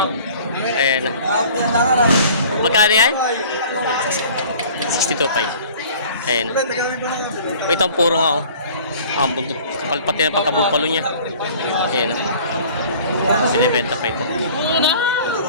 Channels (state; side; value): inverted; both; correlation -0.48